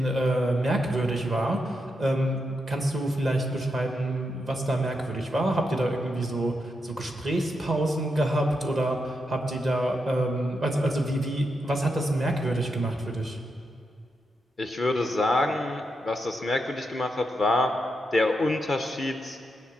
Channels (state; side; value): normal; both; correlation 0.84